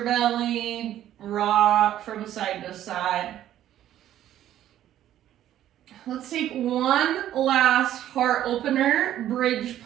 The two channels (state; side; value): quieter; left; 12.1 dB